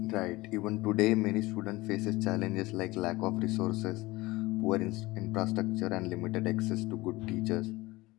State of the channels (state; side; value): quieter; right; 20.6 dB